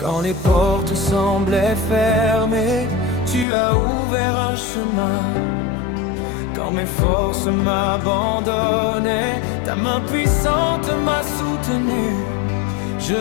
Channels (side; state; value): right; drops out; at 3.5 s